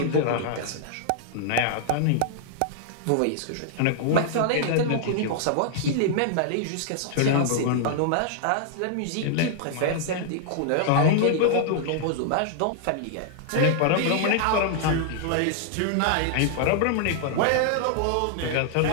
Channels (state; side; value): different; both; correlation -0.01